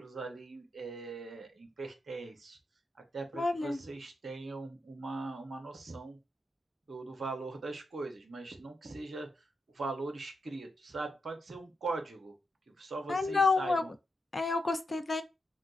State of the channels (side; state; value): both; normal; correlation 0.85